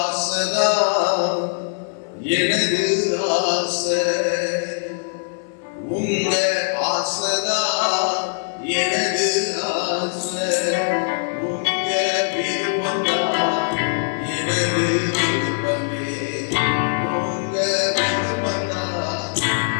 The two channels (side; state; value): right; silent; digital silence